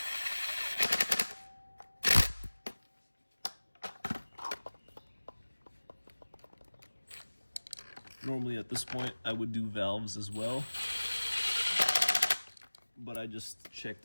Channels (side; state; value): both; inverted; correlation -1.00